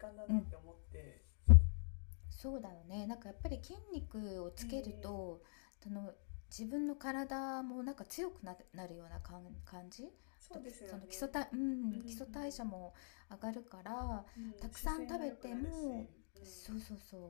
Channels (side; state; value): right; silent; digital silence